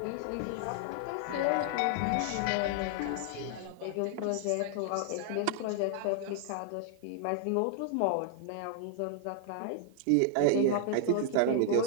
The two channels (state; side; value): different; both; correlation 0.00